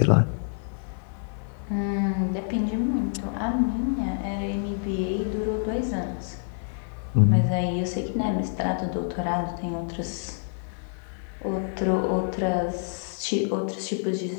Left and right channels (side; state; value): right; silent; digital silence